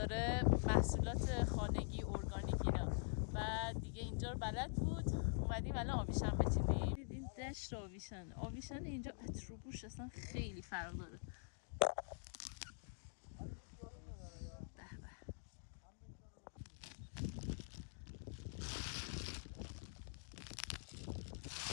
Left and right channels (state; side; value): silent; right; digital silence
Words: محصولات خانگی ارگانیک اینا، و دیگه اینجا رو بلد بود. اومدیم الان آویشن بچینیم. این دشت آویشن اینجا اتروبوش اصلا خیلی فرق داره.